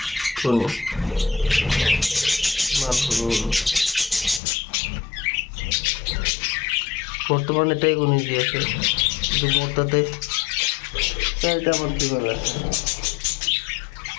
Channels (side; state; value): right; drops out; at 4.4 s